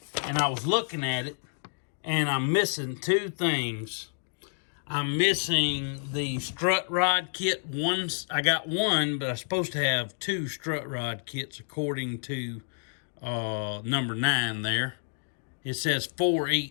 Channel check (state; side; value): silent; right; digital silence